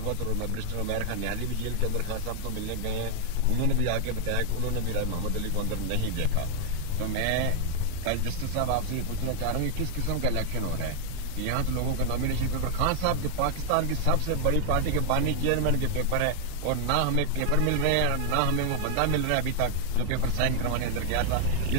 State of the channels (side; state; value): both; different; correlation 0.00